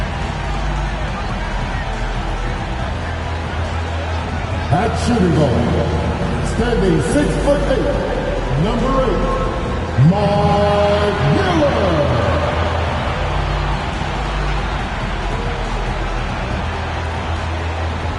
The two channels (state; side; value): identical; both; correlation 1.00